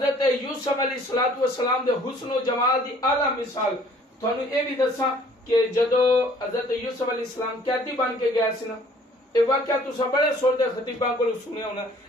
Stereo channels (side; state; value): both; normal; correlation 0.56